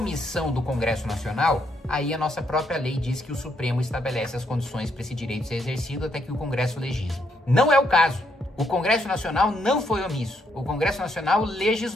do Congresso Nacional, aí a nossa própria lei diz que o Supremo estabelece as condições para esse direito ser exercido até que o Congresso legisle. Não é o caso. O Congresso Nacional não foi omisso. O Congresso Nacional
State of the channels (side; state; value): both; normal; correlation 0.75